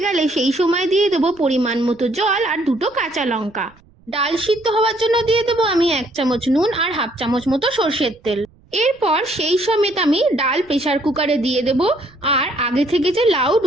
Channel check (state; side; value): noise; right; rumble, 29 dB below the sound